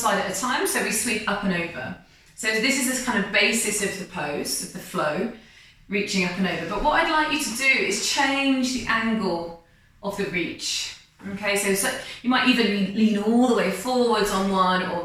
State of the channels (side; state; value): both; identical; correlation 1.00